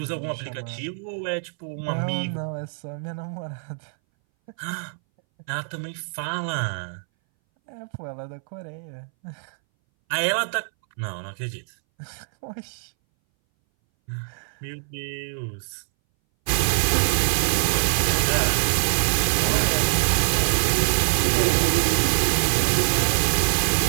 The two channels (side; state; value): left; silent; 61 dB below the other